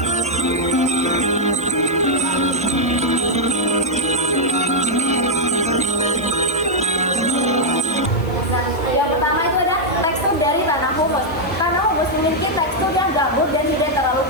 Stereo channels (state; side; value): noise; left; hiss, 24 dB below the sound